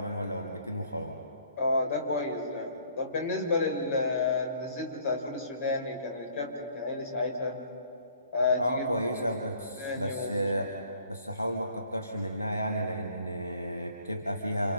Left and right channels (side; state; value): both; inverted; correlation -0.59